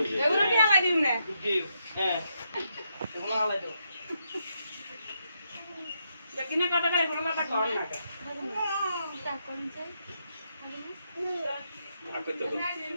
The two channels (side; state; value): both; inverted; correlation -0.80